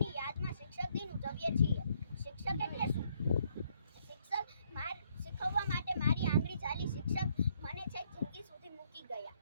યાદમાં શિક્ષક દિન ઉજવીએ છીએ. શિક્ષક એટલે શું? શીખવવા માટે મારી આંગળી ચાલી. શિક્ષક મને છેક જિંદગી સુધી મૂકી ગયા.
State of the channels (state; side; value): inverted; both; correlation -0.69